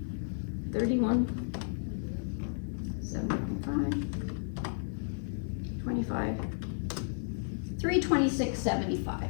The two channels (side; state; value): right; silent; 56 dB below the other